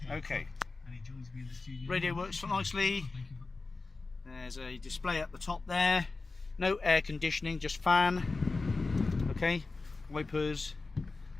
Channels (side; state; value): right; quieter; 3.7 dB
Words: Okay. Radio works nicely. There's a display at the top there. No air conditioning, just fan. Okay. Wipers.